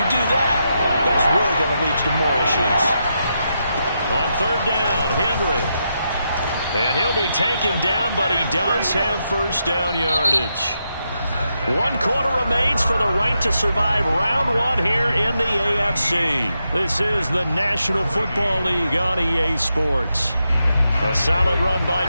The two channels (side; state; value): both; inverted; correlation -0.84